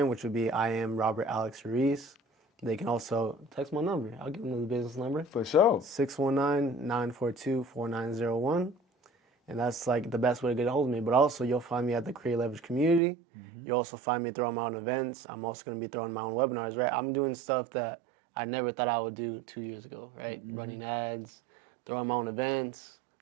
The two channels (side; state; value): left; drops out; at 13.0 s